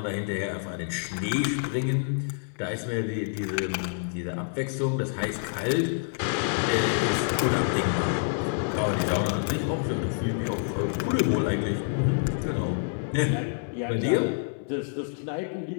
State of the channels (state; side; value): silent; right; 60 dB below the other